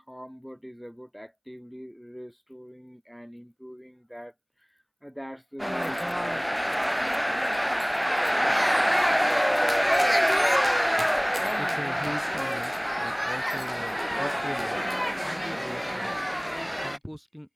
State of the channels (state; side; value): identical; both; correlation 1.00